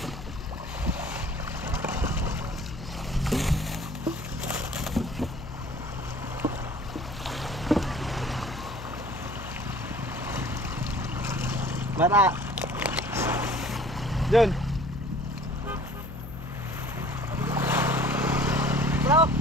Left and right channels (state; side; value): noise; left; hum, 11 dB below the sound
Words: Mara. Jun. Bro.